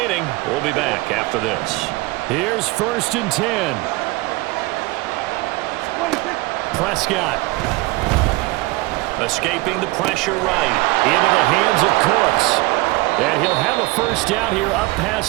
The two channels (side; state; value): left; quieter; 21.9 dB